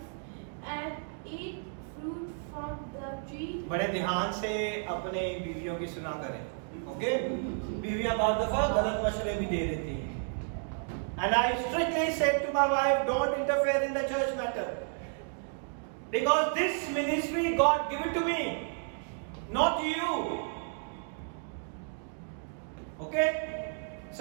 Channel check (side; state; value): left; silent; 56 dB below the other